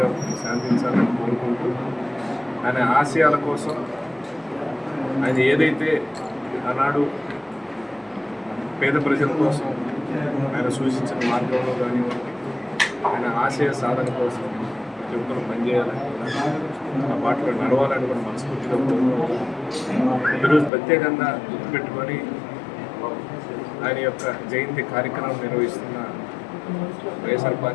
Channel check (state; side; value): drops out; right; at 20.7 s